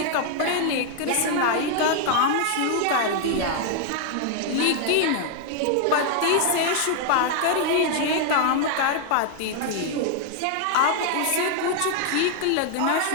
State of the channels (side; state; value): both; different; correlation 0.00